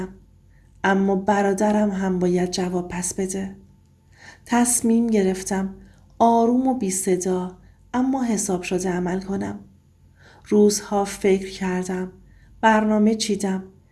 اما برادرم هم باید جواب پس بده. تصمیم گرفتم آروم و بی صدا اما حساب شده عمل کنم. روزها فکر کردم، برنامه چیدم.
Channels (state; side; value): identical; both; correlation 1.00